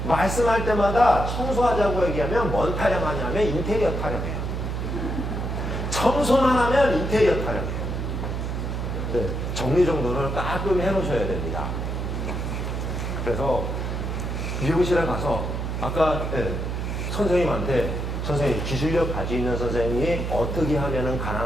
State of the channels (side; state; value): right; noise; hum, 3 dB below the sound